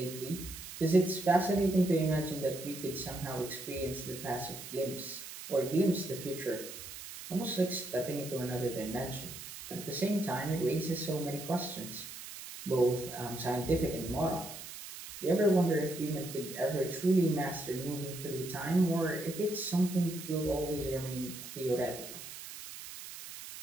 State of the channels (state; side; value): noise; right; hiss, 11 dB below the sound